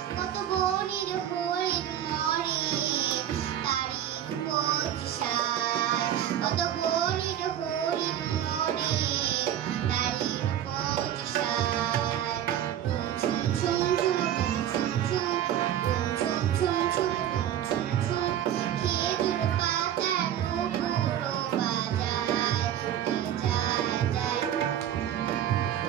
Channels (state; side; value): quieter; left; 10.7 dB